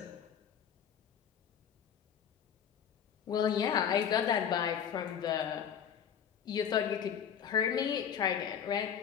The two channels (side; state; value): right; quieter; 8.3 dB